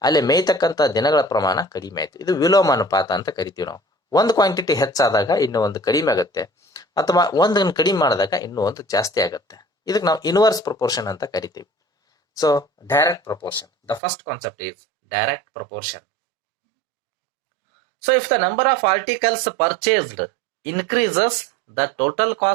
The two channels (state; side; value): drops out; left; at 14.0 s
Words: ಅಲ್ಲಿ ಮೇಯ್ತಕ್ಕಂಥ ದಿನಗಳ ಪ್ರಮಾಣ ಕಡಿಮೆ ಆಯಿತು. ಇದು ವಿಲೋಮ ಅನುಪಾತ ಅಂತ ಕರಿತೀವಿ ನಾವು. ಒಂದು ಕ್ವಾಂಟಿಟಿ ಹೆಚ್ಚಾದಾಗ ಇನ್ನೂ ಒಂದು ಕಡಿಮೆ ಆಗುತ್ತೆ, ಅಥವಾ ಒಂದನ್ನು ಕಡಿಮೆ ಮಾಡಿದಾಗ ಇನ್ನೂ ಒಂದು ಜಾಸ್ತಿ ಆಗುತ್ತೆ. ಇದಕ್ಕೆ ನಾವು ಇನ್ವರ್ಸ್ ಪ್ರಪೋರ್ಷನ್ ಅಂತ ಕರಿತೀವಿ. So direct proportion, the first concept is direct proportion. So if the number of articles purchased increases, the total